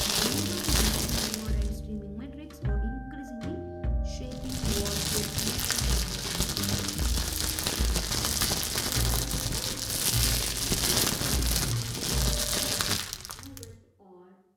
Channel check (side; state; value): both; identical; correlation 1.00